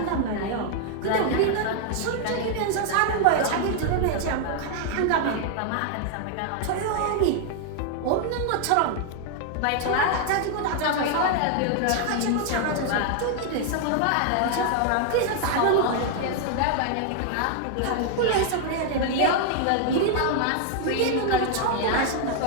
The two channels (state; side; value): different; both; correlation 0.00